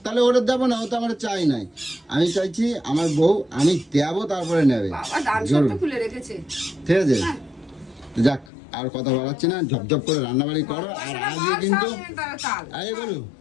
তাহলে ওটা দেবো না, ও তো আমার চাই নাই। আমি চাইছি আমার বউ আমি দেবো, তারপরে নেবে। বাবা দান জোর। সব তো খুলে রেখেছে। ঠিক আছে? হ্যাঁ। তো যাক, আর কথা বাড়াচ্ছি না, ঝপঝপ করে রান্নাবাড়ি করো। আর পয়সাটা আজকে পাও, কিন্তু সামনে তারা তাল। আরে বলো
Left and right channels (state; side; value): drops out; right; at 8.5 s